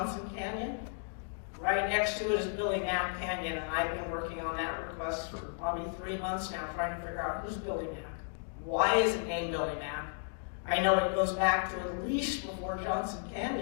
Canyon. Right next to it is Billy Knapp Canyon, and I've been working on that request for probably 3 months now, trying to figure out who's Billy Knapp. Why is it named Billy Knapp? I know it goes back to at least before Johnson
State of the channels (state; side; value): silent; right; 55 dB below the other